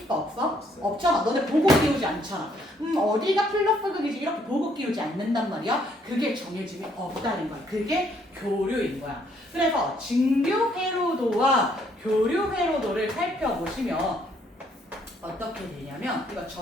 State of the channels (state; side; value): normal; both; correlation 0.67